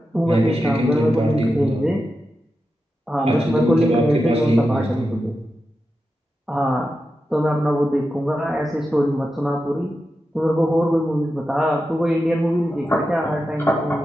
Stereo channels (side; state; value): both; normal; correlation 0.90